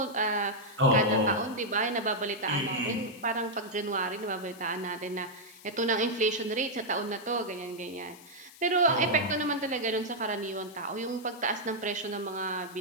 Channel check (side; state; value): left; noise; hiss, 21 dB below the sound